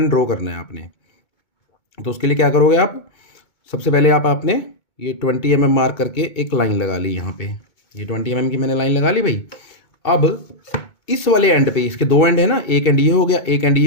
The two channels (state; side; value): late; right; 2.2 ms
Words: ड्रॉ करना है आपने। तो उसके लिए क्या करोगे आप, सबसे पहले आपने ये 20 mm मार्क करके एक लाइन लगा ली यहाँ पे। ये 20 mm की मैंने लाइन लगा ली भाई। अब इस वाले एंड पे, इसके दो एंड है ना, एक एंड ये हो गया, एक एंड